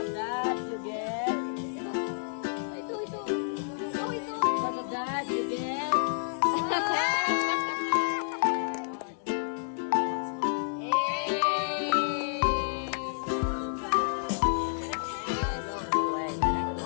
of that, you get. Ito. Because of that, you get.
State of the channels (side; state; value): right; silent; digital silence